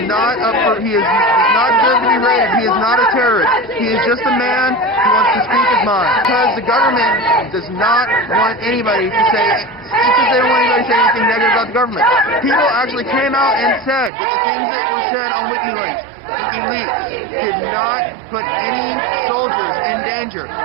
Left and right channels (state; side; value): drops out; left; at 14.1 s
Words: not deserved to be rated. He is not a terrorist. He is just a man who wants to speak his mind. Because the government does not want anybody to say, because they don't want anybody to say anything negative about the government. People actually came out and said that the things that were said on WikiLeaks did not put any soldiers in danger.